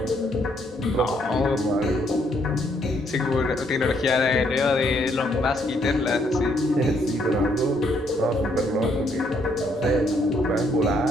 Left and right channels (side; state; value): both; normal; correlation 0.70